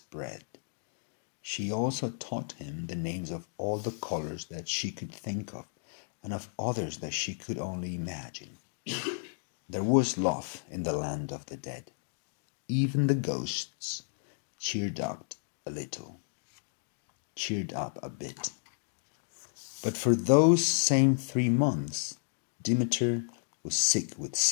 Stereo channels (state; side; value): silent; right; digital silence